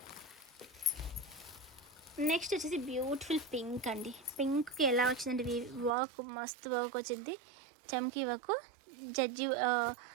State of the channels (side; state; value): left; drops out; at 6.0 s